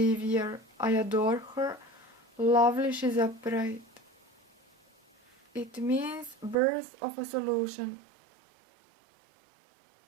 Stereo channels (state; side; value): drops out; left; at 6.6 s